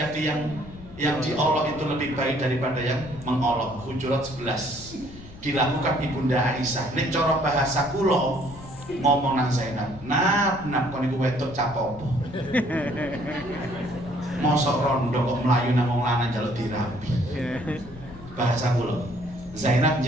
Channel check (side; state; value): left; noise; rumble, 17 dB below the sound